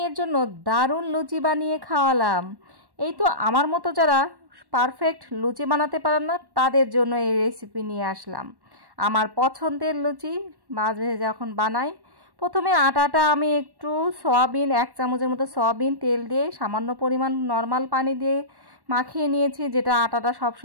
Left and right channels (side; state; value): left; late; 1.1 ms